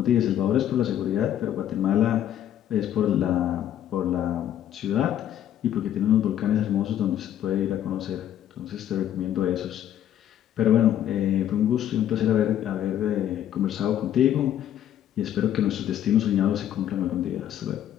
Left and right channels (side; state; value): right; quieter; 10.9 dB